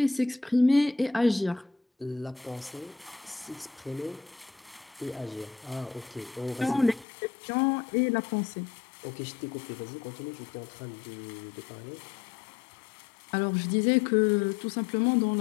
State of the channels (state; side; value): drops out; right; at 7.1 s